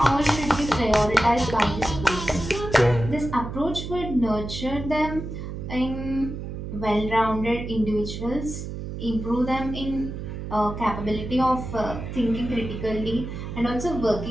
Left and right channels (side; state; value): right; noise; hum, 7 dB below the sound